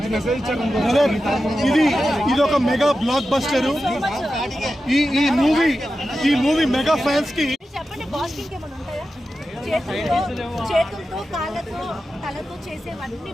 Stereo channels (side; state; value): both; normal; correlation 0.92